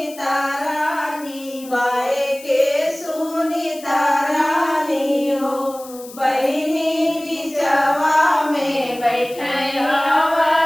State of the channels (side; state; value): left; noise; hiss, 18 dB below the sound